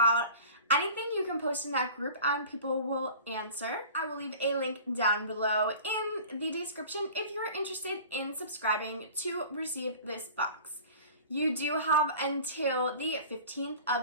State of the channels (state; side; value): inverted; both; correlation -0.42